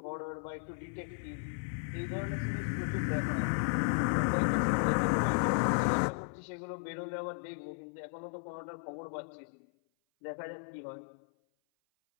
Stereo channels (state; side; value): silent; right; 55 dB below the other